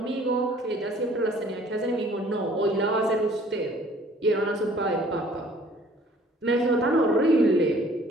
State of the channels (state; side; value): normal; both; correlation 0.55